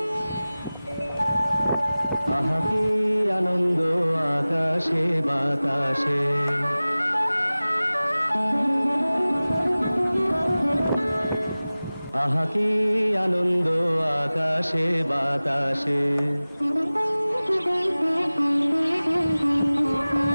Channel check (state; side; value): inverted; both; correlation -0.98